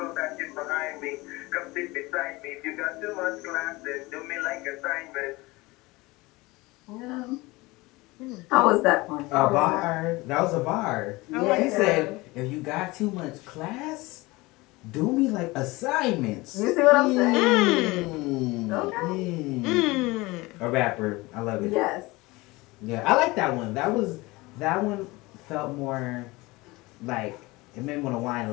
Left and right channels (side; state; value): right; quieter; 22.0 dB